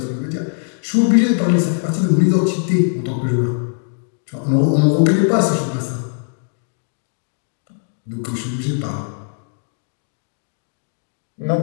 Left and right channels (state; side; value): silent; right; digital silence